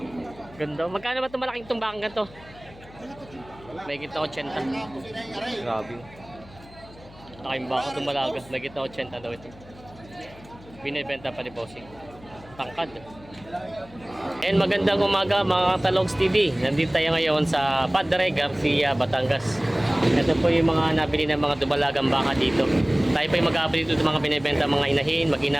ganda. Magkano ba itong malaking tumbang ganito? May kita 80. Grabe. Laking baka dumalaga. May kita 80 daw ito. Binibenta pa ni Bossing. Tangkad. And magandang umaga mga Talogs TV. Nandito tayo ngayon sa Padre Garcia, Batangas. Ito po yung mga nabili ng mga dumalagang baka dito. Tayo po yung mag-update dito ng mga binibenta mga inahin,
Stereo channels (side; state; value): left; noise; hum, 21 dB below the sound